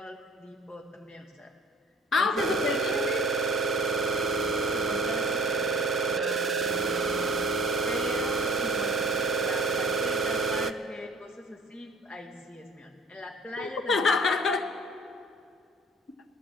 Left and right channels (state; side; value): normal; both; correlation 0.50